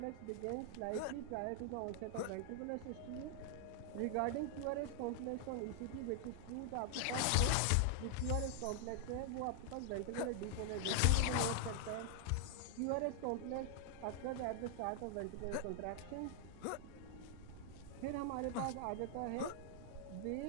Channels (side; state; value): both; different; correlation 0.00